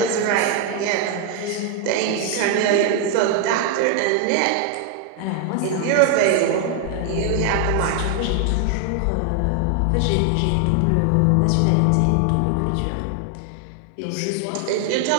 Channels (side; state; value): both; different; correlation 0.00